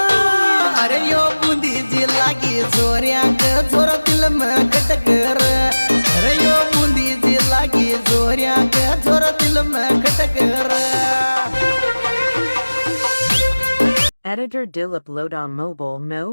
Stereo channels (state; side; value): inverted; both; correlation -1.00